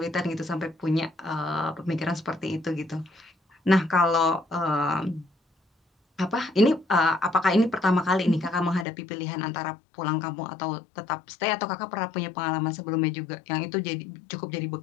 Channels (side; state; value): right; drops out; at 8.8 s